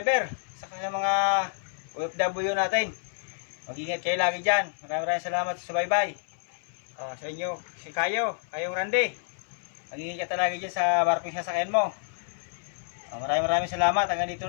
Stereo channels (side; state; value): right; silent; 59 dB below the other